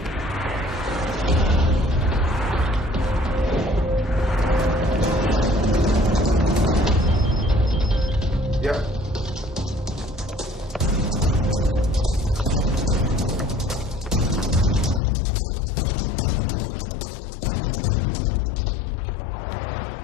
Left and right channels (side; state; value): right; drops out; at 15.0 s